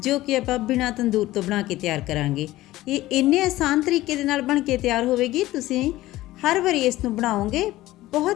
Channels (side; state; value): right; quieter; 16.6 dB